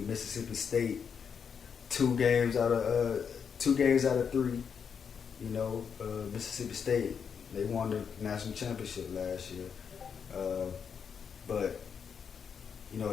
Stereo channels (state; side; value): quieter; right; 6.8 dB